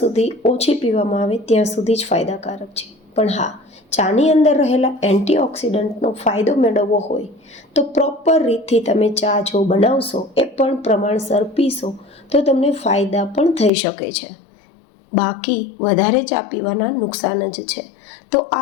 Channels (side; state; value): right; drops out; at 13.7 s